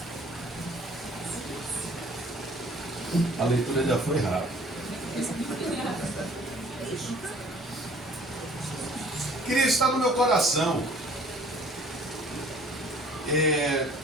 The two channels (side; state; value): both; normal; correlation 0.53